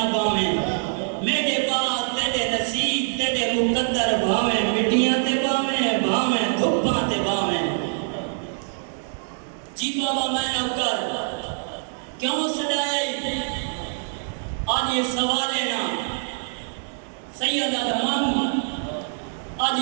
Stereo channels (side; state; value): left; silent; digital silence